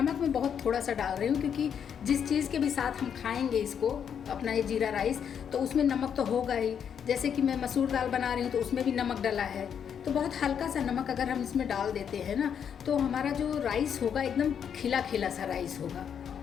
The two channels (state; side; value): quieter; right; 8.0 dB